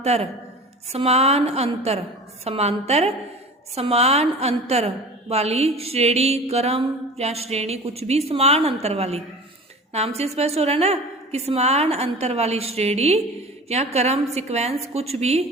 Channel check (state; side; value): normal; both; correlation 0.37